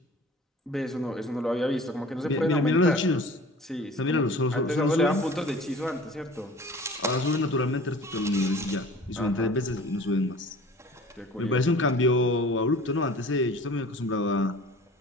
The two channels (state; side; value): normal; both; correlation 0.44